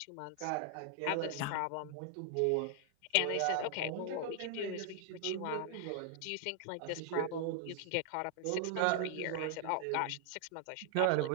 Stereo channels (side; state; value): both; different; correlation 0.00